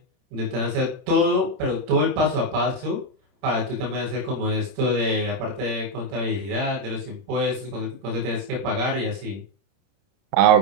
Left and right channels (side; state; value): left; late; 31 ms